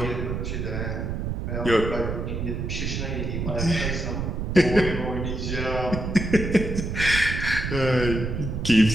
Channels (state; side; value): noise; right; rumble, 3 dB below the sound